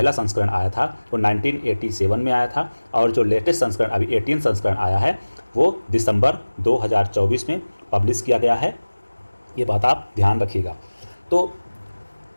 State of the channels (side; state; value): both; inverted; correlation -1.00